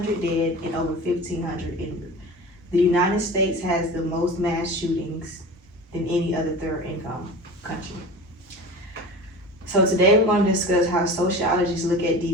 dead and over 1,500 injured. The United States has the most mass shootings than any other third income country. So today we're going to discuss how sociologists look at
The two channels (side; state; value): both; normal; correlation 0.34